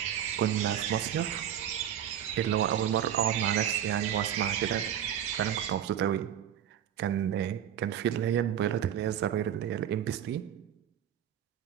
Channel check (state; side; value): quieter; left; 10.1 dB